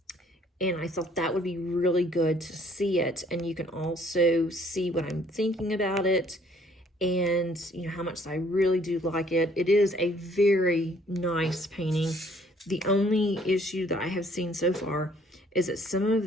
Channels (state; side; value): normal; both; correlation 0.61